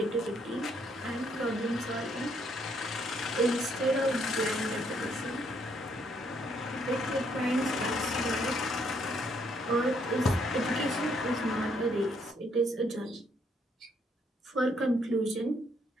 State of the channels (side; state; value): both; normal; correlation 0.70